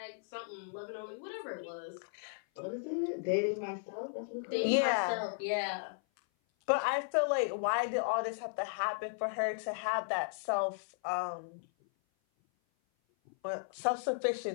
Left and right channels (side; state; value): right; silent; 54 dB below the other